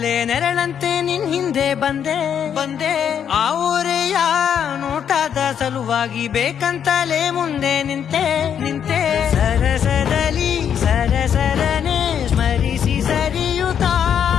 ನೆರಳಂತೆ ನಿನ್ ಹಿಂದೆ ಬಂದೆ. ಆ ಊರೆಯ ನೋಟದ ಸಲುವಾಗಿ ಬೇಕಂತಲೇ ಮುಂದೆ ನಿಂತೆ. ಸರಸದಲ್ಲಿ ಸರಸರನೆ ಸ್ಮರಿಸಿ ಸರಿಯುತ್ತಾ,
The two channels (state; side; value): quieter; right; 8.5 dB